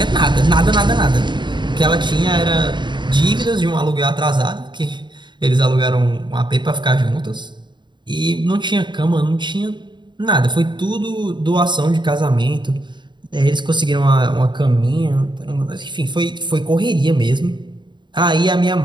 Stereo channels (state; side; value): late; left; 0.22 ms